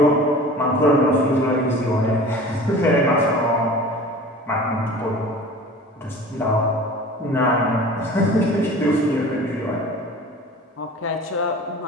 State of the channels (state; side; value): normal; both; correlation 0.40